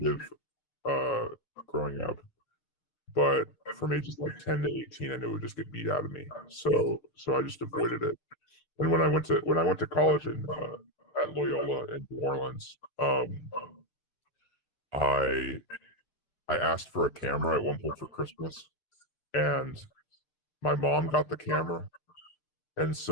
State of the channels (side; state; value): right; late; 6.6 ms